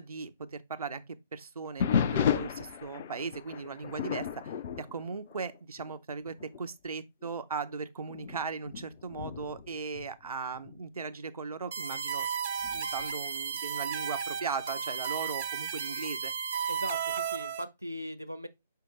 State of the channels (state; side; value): inverted; both; correlation -0.51